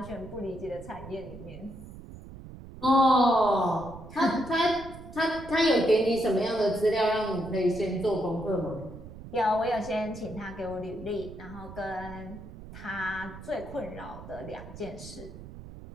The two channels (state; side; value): noise; right; rumble, 14 dB below the sound